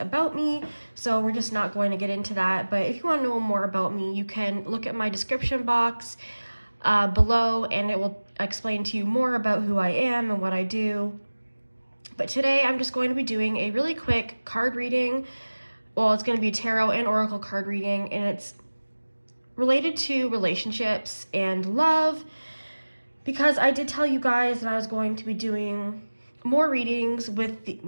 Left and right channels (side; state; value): both; inverted; correlation -1.00